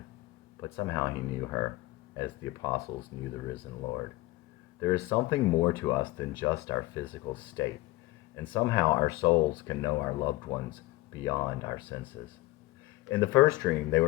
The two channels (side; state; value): right; quieter; 18.8 dB